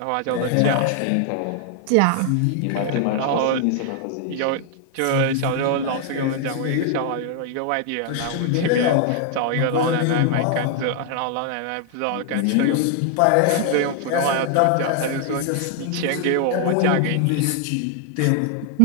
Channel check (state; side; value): different; both; correlation 0.00